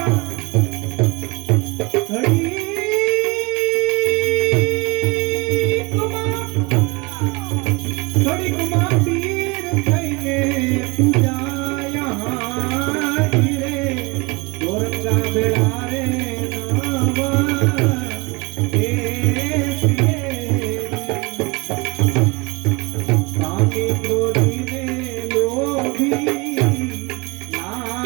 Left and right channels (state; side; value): quieter; left; 26.8 dB